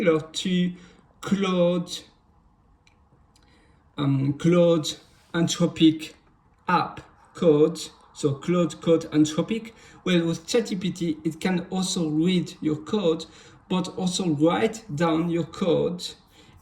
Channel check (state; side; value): identical; both; correlation 1.00